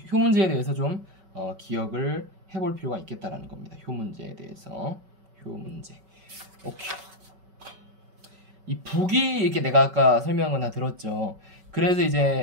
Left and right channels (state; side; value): late; left; 5.3 ms